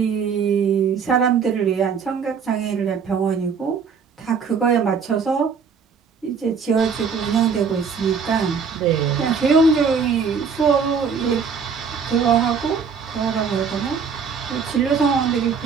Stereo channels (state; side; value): quieter; left; 6.0 dB